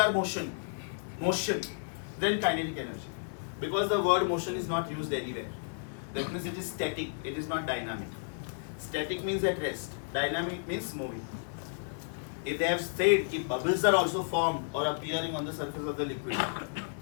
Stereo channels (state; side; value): silent; right; 56 dB below the other